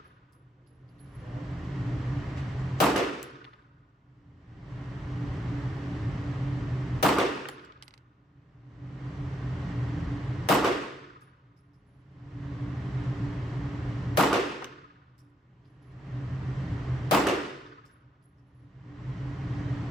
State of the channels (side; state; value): both; normal; correlation 0.76